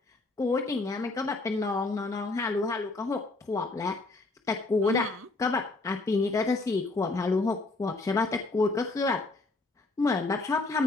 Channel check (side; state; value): right; quieter; 3.3 dB